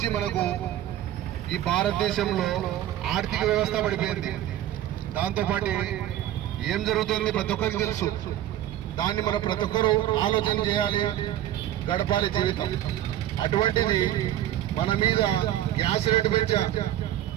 మనకు ఈ భారతదేశంలో ఆర్థిక వ్యవస్థ పడిపోయింది. దాంతోపాటు ఏం జరుగుతుంది ప్రతి ఒక్కరికి తెలుసు. దాన్ని మనం ప్రతి ఒక్కరూ ఆలోచన చేయాలి, గడపాలి జీవితం. అటువంటిది మన మీద గ్యాస్ రేటు పెంచా,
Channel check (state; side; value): quieter; left; 12.8 dB